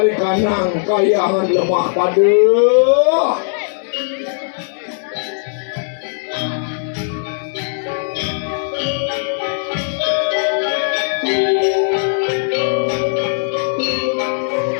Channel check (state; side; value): silent; right; digital silence